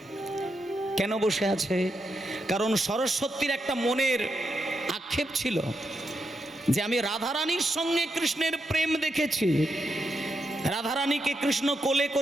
কেন বসে আছে? কারণ সরস্বতীর একটা মনের আক্ষেপ ছিল যে আমি রাধারানীর সঙ্গে কৃষ্ণের প্রেম দেখেছি। রাধারানীকে কৃষ্ণ কোলে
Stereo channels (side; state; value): both; normal; correlation 0.83